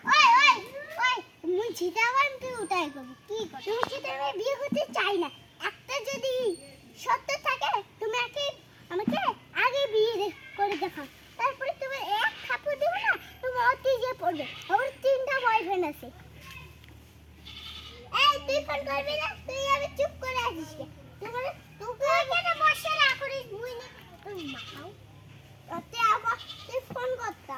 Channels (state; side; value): identical; both; correlation 1.00